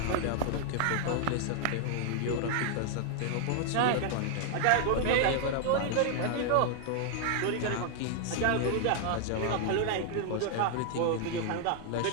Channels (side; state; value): both; different; correlation 0.00